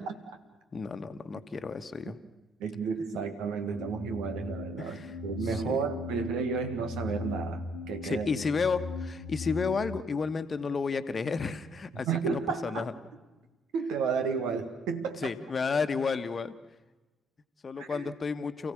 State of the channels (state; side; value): normal; both; correlation 0.67